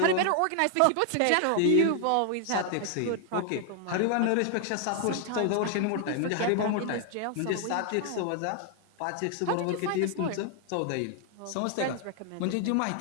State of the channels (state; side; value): different; both; correlation 0.00